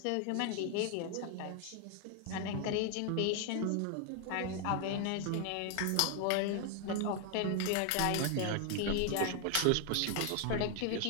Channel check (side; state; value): both; different; correlation 0.01